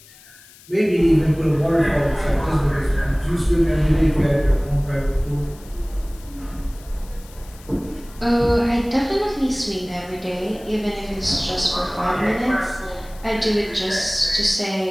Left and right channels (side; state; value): left; noise; hiss, 23 dB below the sound